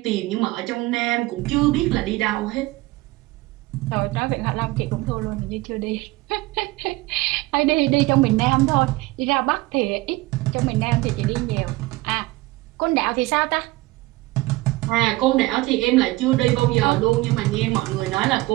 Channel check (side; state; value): left; quieter; 20.3 dB